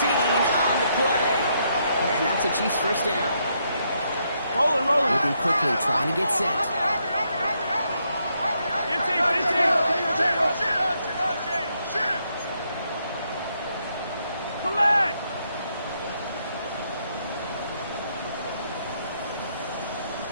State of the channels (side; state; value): both; inverted; correlation -0.76